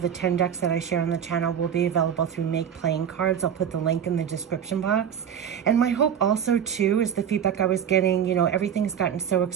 10 decks that I share on the channel will be available through Make Playing Cards. I'll put the link in the description box. And my hope also too is the feedback I was getting, everything's gotten so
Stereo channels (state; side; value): quieter; left; 8.7 dB